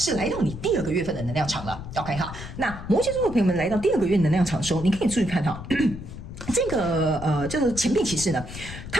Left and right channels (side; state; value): left; noise; rumble, 11 dB below the sound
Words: 来到你第2个月份的能量场了。 OK 那摩羯座的朋友们来到第2个月能量场的时候，你可以注意看这个叫做钱币骑士呢，